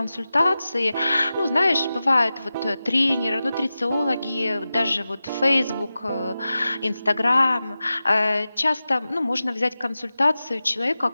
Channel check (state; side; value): inverted; both; correlation -0.94